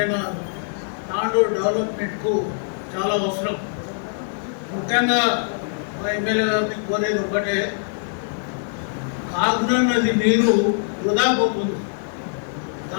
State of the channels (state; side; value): silent; right; digital silence